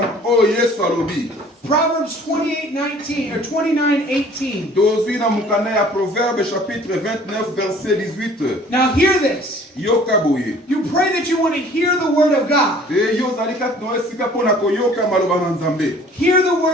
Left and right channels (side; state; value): both; normal; correlation 0.52